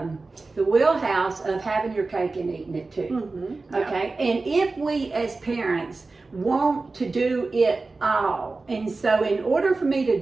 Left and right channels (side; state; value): left; quieter; 3.7 dB